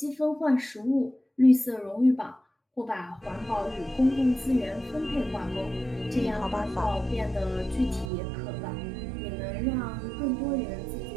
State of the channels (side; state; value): left; drops out; at 8.1 s